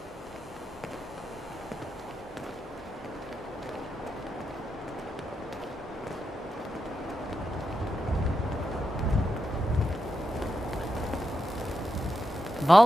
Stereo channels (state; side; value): normal; both; correlation 0.86